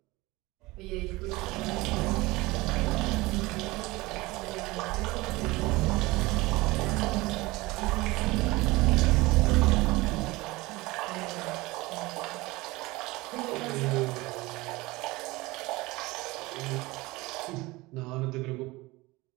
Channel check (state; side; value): quieter; left; 21.5 dB